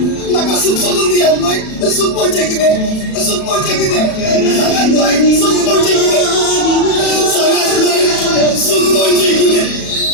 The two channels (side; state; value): right; late; 37 ms